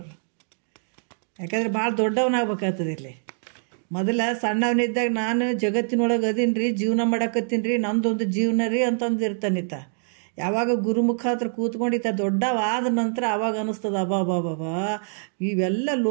ಯಾಕಂದ್ರೆ ಭಾಳ ದೊಡ್ಡವನಾಗ್ಬೇಕಾಗ್ತದೆ. ಇಲ್ಲಿ ಮೊದಲ ಸಣ್ಣವನಿದ್ದಾಗ ನಾನು ಜಗತ್ತಿನೊಳಗೆ ಅದೀನಿ ರೀ, ಜೀವನ ಮಾಡಕತ್ತೀನಿ ರೀ, ನಂದೊಂದು ಜೀವನ ರೀ ಅಂತಂದಿರ್ತಾನಿತ್ತ. ಯಾವಾಗ ಗುರುಮುಖ ಹತ್ರ ಕೂತ್ಕೊಂಡಿತ್ತ ದೊಡ್ಡವಾದ ನಂತರ ಆವಾಗ ಅನ್ನಿಸ್ತದ ಅಬಾಬಾಬಾ ಇವೆಲ್ಲ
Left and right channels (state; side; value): silent; left; 62 dB below the other